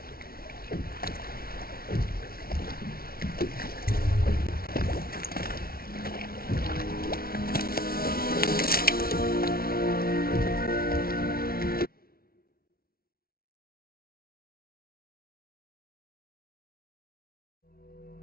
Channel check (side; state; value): right; late; 0.44 ms